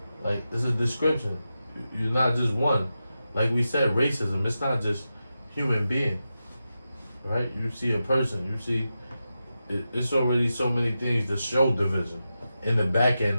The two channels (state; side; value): inverted; both; correlation -0.90